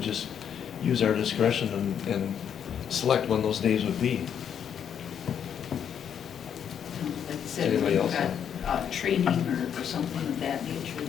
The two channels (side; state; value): right; quieter; 8.4 dB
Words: use our discretion and select when those days would be. Like you said, Anybody you've else? got training or something of that nature